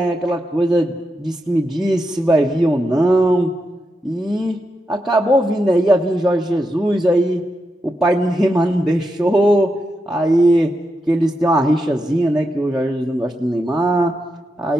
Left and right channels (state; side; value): normal; both; correlation 0.86